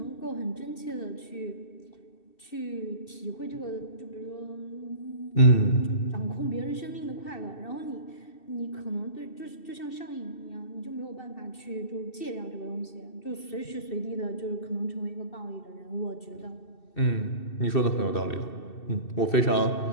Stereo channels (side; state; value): right; late; 2.7 ms